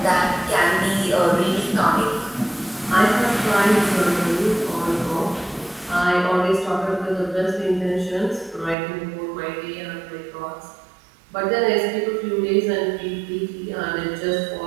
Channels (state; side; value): drops out; left; at 8.8 s